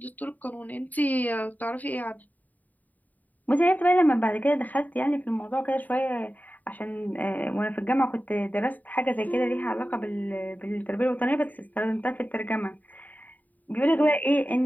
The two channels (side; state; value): right; late; 0.080 ms